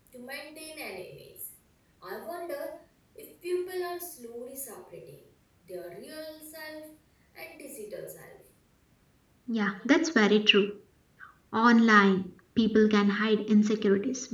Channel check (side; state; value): both; identical; correlation 1.00